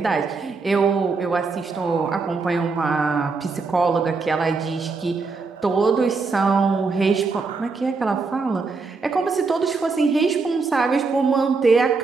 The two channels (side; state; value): left; quieter; 4.3 dB